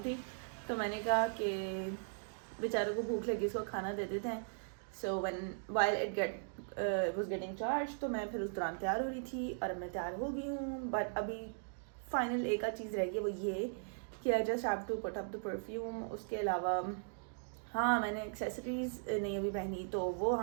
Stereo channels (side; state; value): left; silent; digital silence